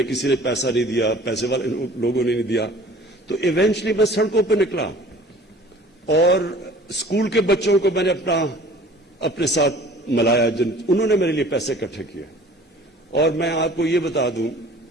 کسی نے پیسہ نہیں دیا, پیسے والے لوگوں نے نہیں دیا, تو ایونچلی میں سڑکوں پہ نکلا اور اسکول کے بچوں کو میں نے اپنے ساتھ ملایا, انہوں نے میرے لیے پیسے اکٹھے کیے. اور میں آپ کو یہ بتا دوں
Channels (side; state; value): both; normal; correlation 0.48